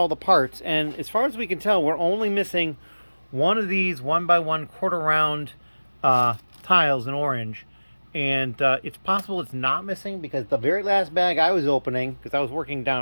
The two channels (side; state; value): both; inverted; correlation -1.00